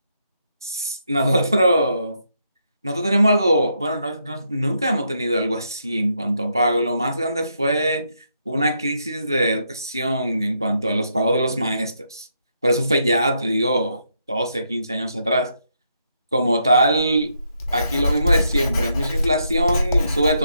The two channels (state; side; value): inverted; both; correlation -0.78